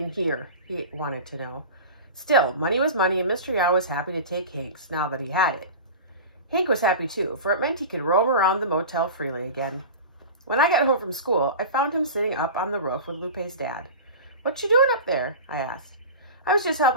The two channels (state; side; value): inverted; both; correlation -0.32